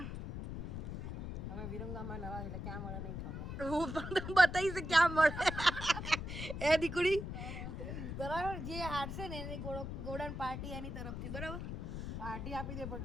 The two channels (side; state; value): left; noise; rumble, 6 dB below the sound